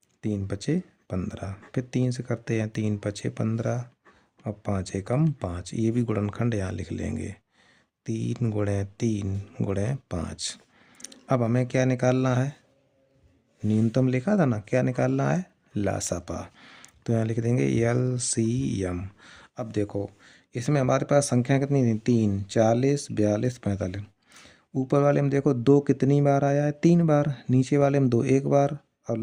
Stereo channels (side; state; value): both; identical; correlation 1.00